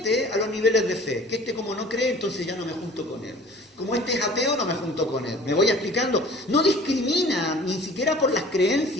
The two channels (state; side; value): normal; both; correlation 0.47